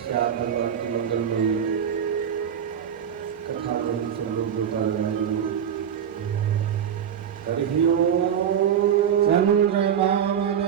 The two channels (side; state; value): left; quieter; 8.7 dB